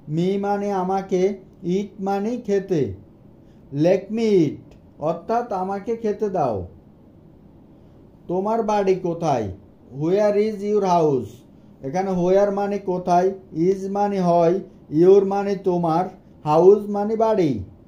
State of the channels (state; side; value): identical; both; correlation 1.00